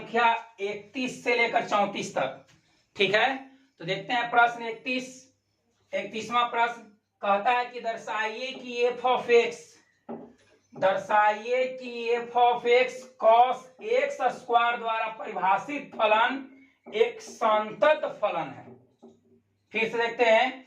31 से लेकर 34 तक। ठीक है, तो देखते हैं प्रश्न 31वां प्रश्न कहता है कि दर्शाइए कि F of x cos X square द्वारा परिभाषित फलन एक संतत फलन है। फिर से देखते हैं,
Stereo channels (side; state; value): both; identical; correlation 1.00